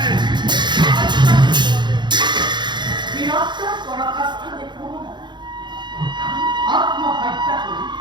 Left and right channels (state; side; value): late; left; 0.22 ms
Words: বীরত্ব পরাকাষ্ঠা দেখব না আত্মহত্যা করি